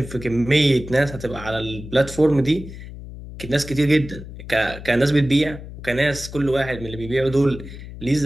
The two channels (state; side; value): noise; left; hum, 13 dB below the sound